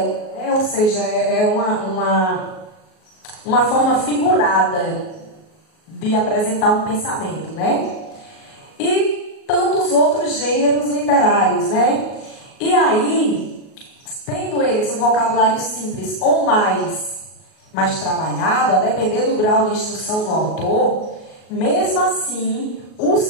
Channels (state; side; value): late; right; 38 ms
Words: Ou seja, é uma forma figurada de apresentar um pensamento, né? E tantos outros gêneros literários, né? E aí, tendo eles um vocabulário simples ou mais trabalhado, a depender do grau de instrução do autor, mesmo assim, o